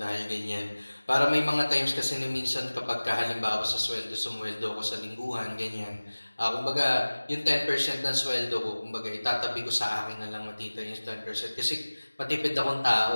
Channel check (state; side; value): inverted; both; correlation -1.00